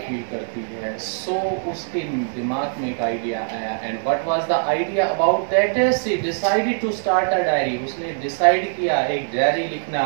करती है। सो उसके दिमाग में एक आइडिया आया। And what was the idea about that, she decided to start a diary, उसने डिसाइड किया एक डायरी लिखना।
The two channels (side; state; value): left; silent; digital silence